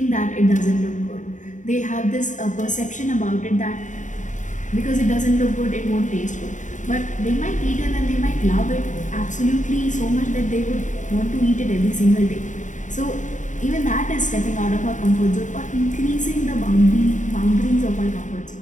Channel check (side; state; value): right; late; 0.36 ms